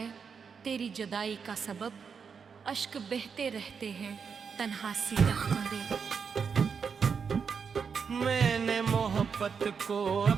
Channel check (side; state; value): left; quieter; 6.1 dB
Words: तेरी जुदाई का सबब। अश्क बहते रहते हैं तन्हा सी रख्म दे। मैंने मोहब्बत को